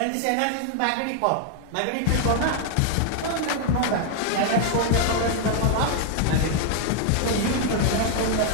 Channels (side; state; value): both; different; correlation 0.00